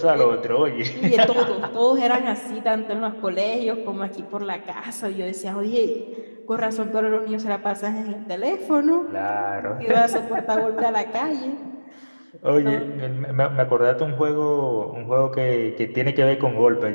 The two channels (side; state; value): both; inverted; correlation -1.00